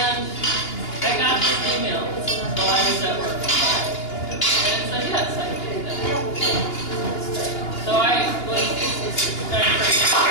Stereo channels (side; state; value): right; late; 2.9 ms